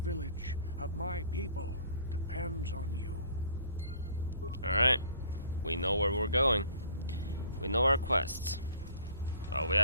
of my people, depends on you. Alright. We know where we're going. We know our quests. Well, we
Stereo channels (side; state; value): both; inverted; correlation -0.52